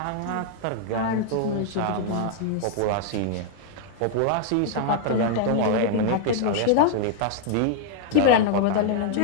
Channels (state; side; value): different; both; correlation 0.00